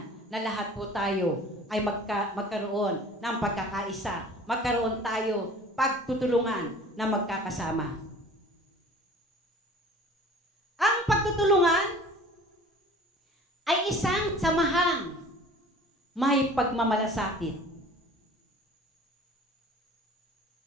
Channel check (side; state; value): both; normal; correlation 0.46